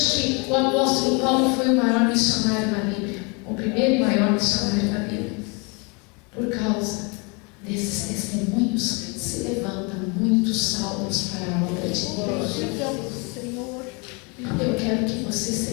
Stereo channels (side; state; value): right; quieter; 31.2 dB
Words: que o apóstolo Paulo foi o maior missionário na Bíblia, o primeiro e maior missionário da Bíblia. Por causa desses testemunhos, se levantam muitos Saulos para a obra de Deus. Eu quero que você